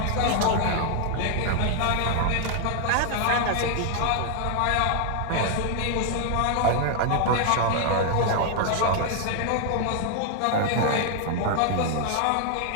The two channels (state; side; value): different; both; correlation 0.00